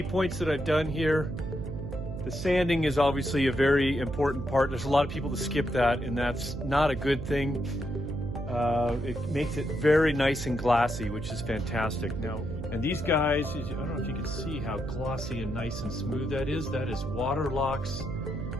points that I've done here. The sanding is obviously a very important part. There's a lot of people that skip that, and that's not a good thing. It makes it very nice and glassy, which is fantastic. Now, and these guys, I don't know if you can see how glossy and nice and smooth that is. That is water locks,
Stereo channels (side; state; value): right; noise; hum, 6 dB below the sound